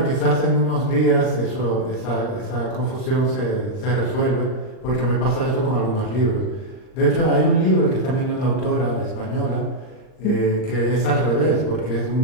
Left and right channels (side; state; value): right; late; 39 ms